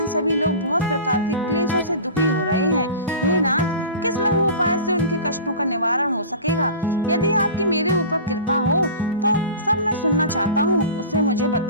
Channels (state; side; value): inverted; both; correlation -0.36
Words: सभी लोग बहुत प्रकार के क्लेशों से दुखी हो रहे हैं। हे नाथ, किस लघु उपाय से उनके कष्टों का निवारण हो सकेगा? यदि आपकी मेरे ऊपर कृपा हो तो सब मैं सुनना चाहता हूँ, उसे मुझे